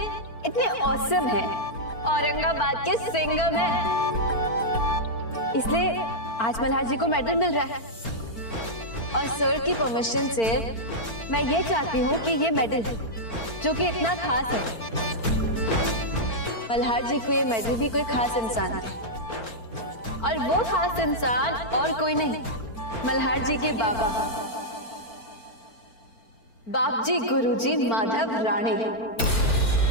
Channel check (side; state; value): right; late; 4.4 ms